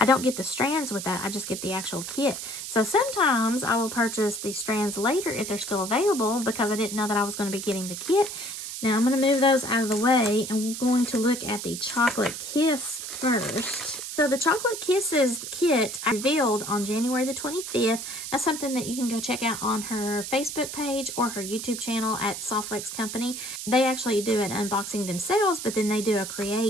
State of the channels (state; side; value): noise; right; hiss, 7 dB below the sound